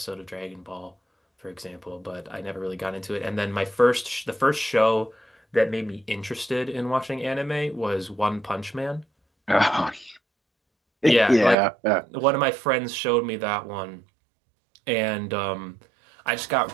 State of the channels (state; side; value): drops out; left; at 11.6 s